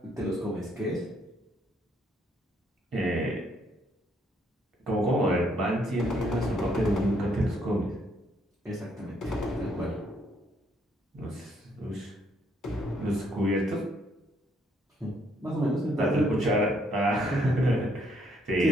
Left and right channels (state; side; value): normal; both; correlation 0.70